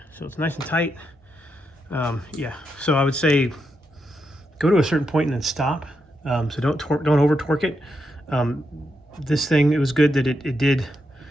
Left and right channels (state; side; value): normal; both; correlation 0.83